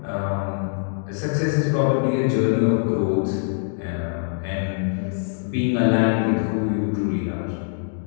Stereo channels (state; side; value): silent; right; digital silence